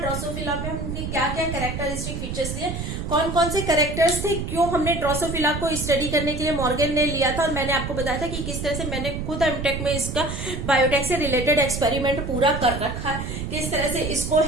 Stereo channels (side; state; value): right; noise; rumble, 5 dB below the sound